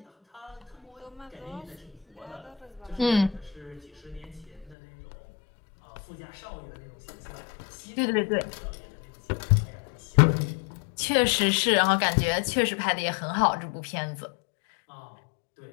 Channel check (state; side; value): drops out; right; at 4.8 s